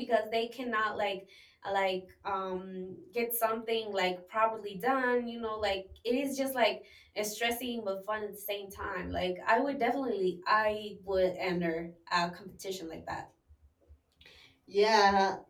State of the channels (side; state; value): both; identical; correlation 1.00